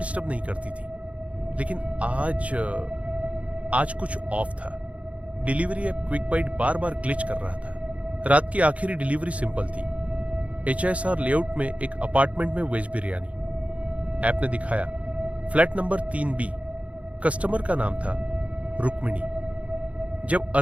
नहीं करती थी, लेकिन आज कुछ ऑफ था। डिलीवरी ऐप क्विक बाइट बार बार ग्लिच कर रहा था। रात की आखिरी डिलीवरी सिंपल थी, HSR लेआउट में एक अपार्टमेंट में वेज बिरयानी। ऐप ने दिखाया फ्लैट नंबर 3B। कस्टमर का नाम था रुक्मिणी। जब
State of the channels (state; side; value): late; left; 0.065 ms